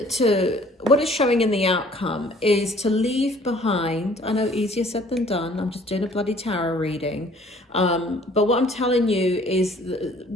what it's showing in the outcome is to leave behind. I know, easier said than done. I'm just doing a bloody tarot reading. But what I'm telling you is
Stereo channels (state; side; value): normal; both; correlation 0.55